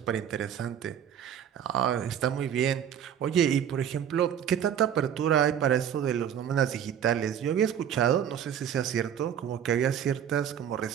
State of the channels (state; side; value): quieter; left; 9.2 dB